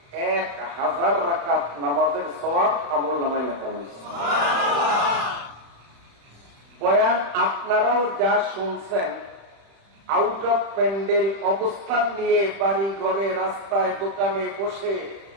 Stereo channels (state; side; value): late; left; 35 ms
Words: 1000 রাকাত নামাজের সওয়াব আমল নামায় লেখা হয়েছে। বয়ান আপনারাও যা শুনছেন, আউট অফ প্যান্ডেল অবস্থান নিয়ে বাড়ি ঘরে রাস্তায় দোকানে বসে